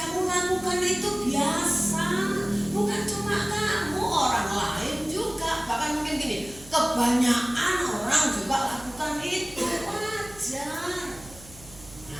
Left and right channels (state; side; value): noise; right; hum, 20 dB below the sound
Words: lakukan itu biasa, bukan cuma kamu, orang lain juga, bahkan mungkin gini, kebanyakan orang juga lakukan itu, wajar.